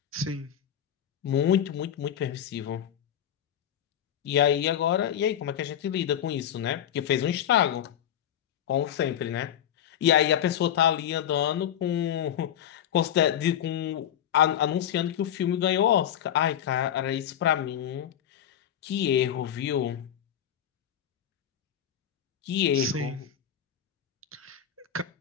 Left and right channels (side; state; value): right; quieter; 10.0 dB